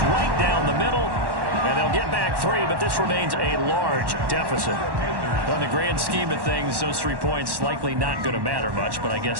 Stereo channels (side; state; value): left; late; 1.1 ms